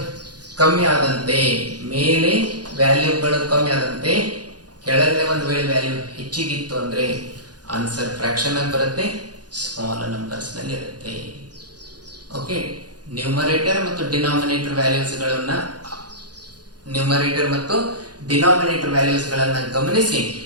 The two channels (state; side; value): late; left; 0.69 ms